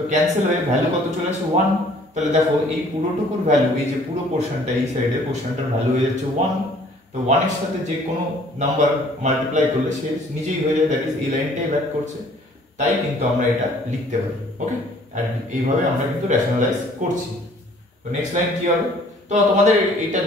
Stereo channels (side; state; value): both; normal; correlation 0.56